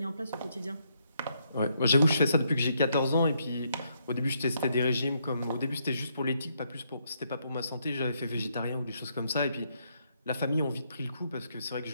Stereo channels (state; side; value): inverted; both; correlation -0.75